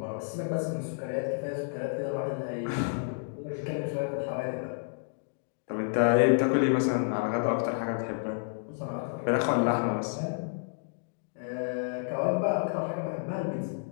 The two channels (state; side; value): silent; right; digital silence